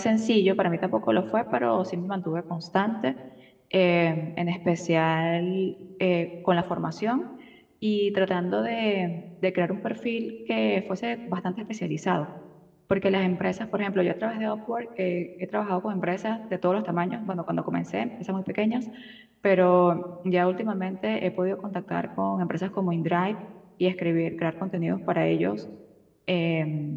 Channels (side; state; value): both; identical; correlation 1.00